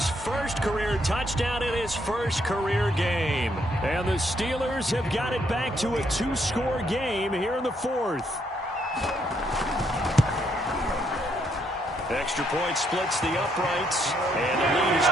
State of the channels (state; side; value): normal; both; correlation 0.73